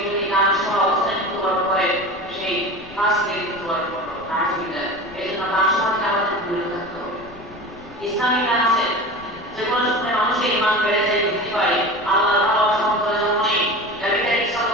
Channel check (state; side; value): noise; left; rumble, 22 dB below the sound